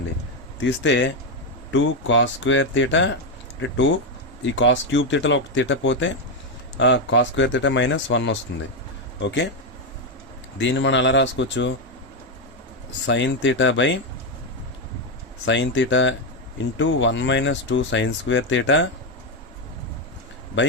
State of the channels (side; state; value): both; normal; correlation 0.06